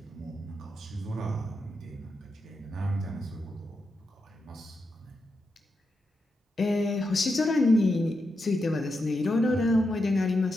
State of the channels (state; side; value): normal; both; correlation 0.86